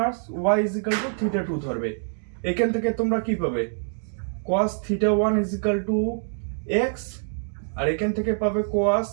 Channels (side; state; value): left; silent; digital silence